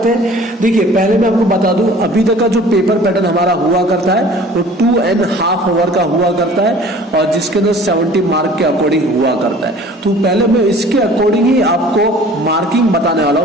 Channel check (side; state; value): both; normal; correlation 0.48